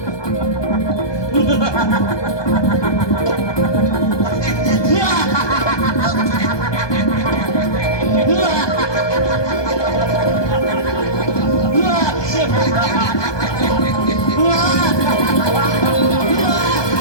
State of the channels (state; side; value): late; right; 1.2 ms